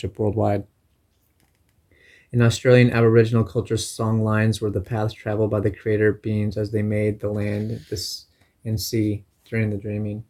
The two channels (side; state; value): both; identical; correlation 1.00